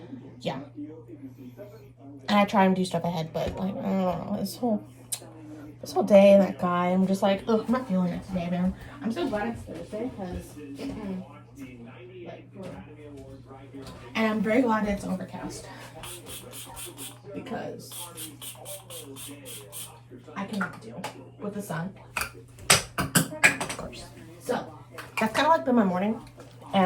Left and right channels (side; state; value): both; identical; correlation 1.00